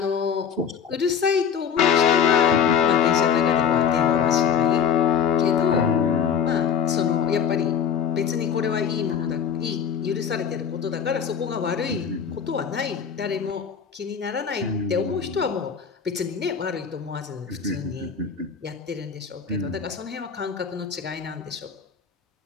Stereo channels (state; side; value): quieter; right; 7.4 dB